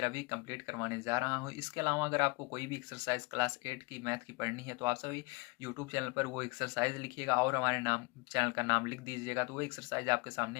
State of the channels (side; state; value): right; quieter; 28.1 dB